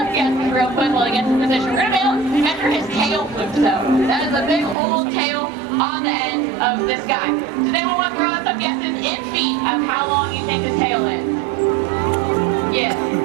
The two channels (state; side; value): drops out; left; at 4.8 s